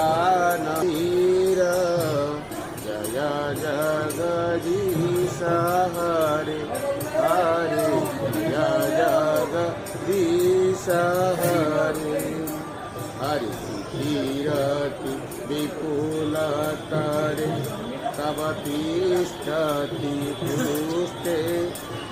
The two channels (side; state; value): both; identical; correlation 1.00